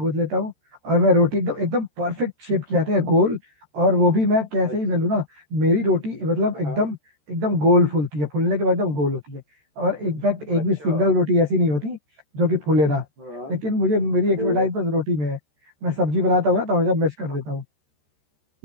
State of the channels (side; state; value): left; late; 13 ms